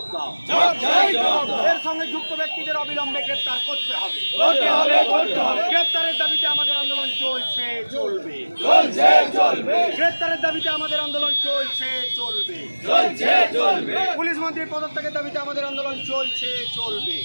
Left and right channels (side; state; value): both; inverted; correlation -1.00